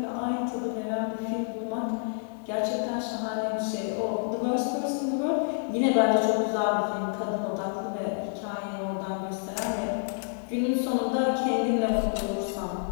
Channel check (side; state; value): right; silent; digital silence